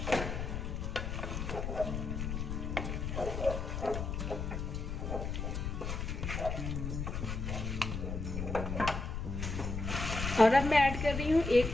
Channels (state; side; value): noise; left; rumble, 3 dB below the sound